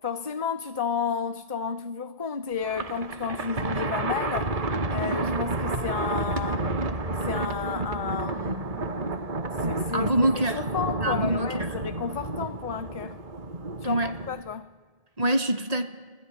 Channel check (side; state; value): left; late; 1.7 ms